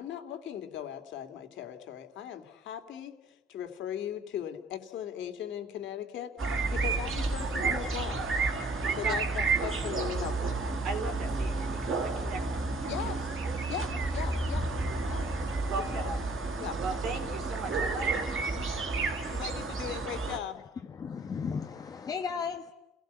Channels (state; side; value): normal; both; correlation 0.57